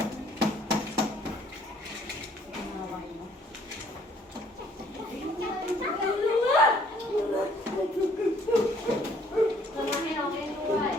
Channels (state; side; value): normal; both; correlation 0.61